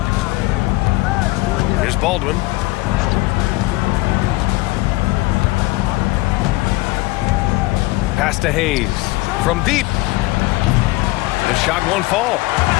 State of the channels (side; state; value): right; quieter; 20.5 dB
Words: Here's Baldwin. Pass to Hayes. From deep. The shot won't fall.